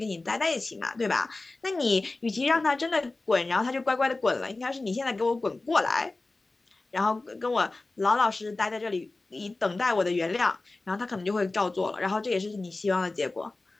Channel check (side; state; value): right; quieter; 3.2 dB